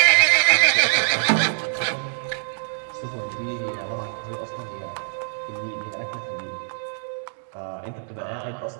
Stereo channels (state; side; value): silent; left; 62 dB below the other